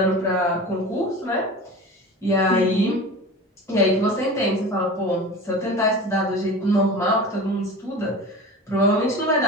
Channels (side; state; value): both; normal; correlation 0.34